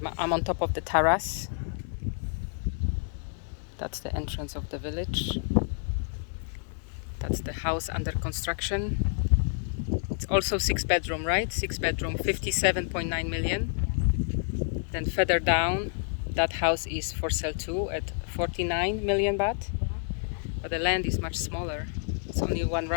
on top of the terrace. That's the entrance of the village. That's the house under construction. It's also 6-bedroom, right? 6-bedroom, 57.9 million. Then further down, that house is for sale too at 49 million baht. But the land is much smaller. It's only one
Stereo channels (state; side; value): silent; right; digital silence